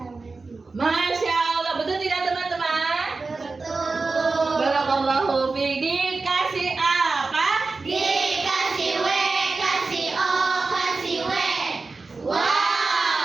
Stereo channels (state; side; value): quieter; left; 3.9 dB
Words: sini. Masya Allah, betul tidak teman-teman? Betul. Barakallahu fiik. Dikasih apa? Dikasih W, kasih O, kasih W.